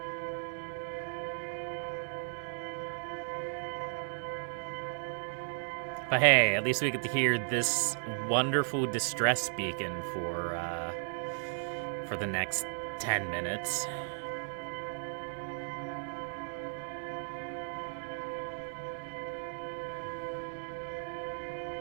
But hey, at least we get to hear this wonderful distress beacon for the next 10 minutes.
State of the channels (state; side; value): silent; left; digital silence